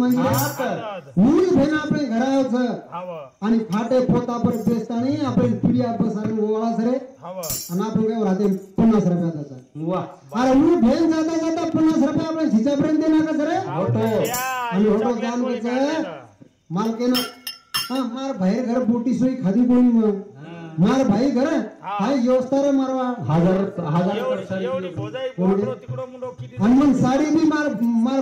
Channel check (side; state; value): both; identical; correlation 1.00